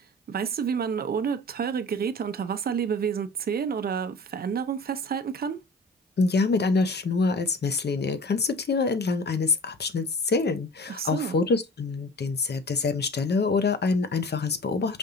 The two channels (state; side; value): normal; both; correlation 0.41